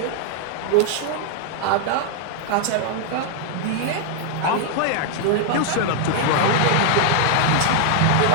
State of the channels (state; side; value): different; both; correlation 0.00